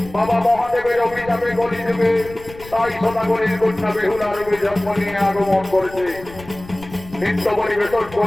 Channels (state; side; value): noise; left; rumble, 18 dB below the sound